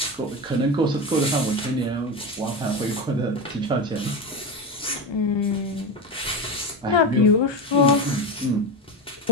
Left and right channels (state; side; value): normal; both; correlation 0.20